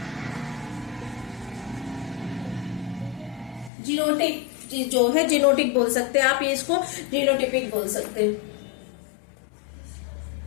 जीनोटिक जो है, जीनोटिक बोल सकते हैं आप, ये इसको जीनोटिपिक बोल सकते हैं।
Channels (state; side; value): drops out; right; at 3.7 s